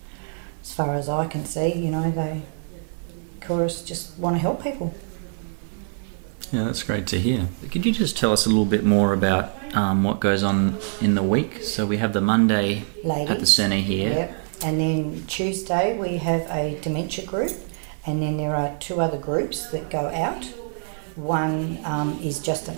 As far as I can see, you know, Chorus just want to help people. Yeah, that's great to hear. Could you just tell us a little bit more about what goes on in the week? So we have the Monday Ladies. at the centre here. Yep. And then Tuesday we have a dementia group, and then there are 2 other groups that go out. One is just an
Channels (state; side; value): silent; left; 58 dB below the other